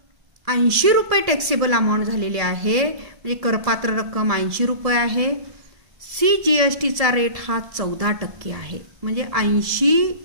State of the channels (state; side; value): late; left; 1.7 ms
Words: 80 रुपये टॅक्सेबल अमाऊंट झालेले आहे, म्हणजे करपात्र रक्कम 80 रुपये आहे. CGSTचा रेट हा 14% आहे, म्हणजे 80